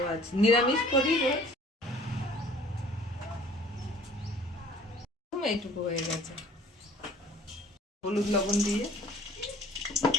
নিরামিষ করি, এইটুকু হয়ে গেছে। হলুদ লবণ দিয়ে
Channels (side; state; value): both; normal; correlation 0.51